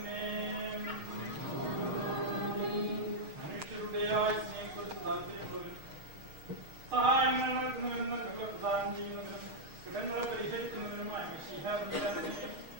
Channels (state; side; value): late; left; 6.5 ms